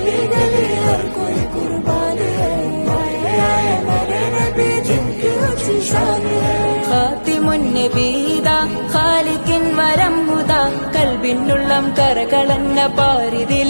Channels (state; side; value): inverted; both; correlation -1.00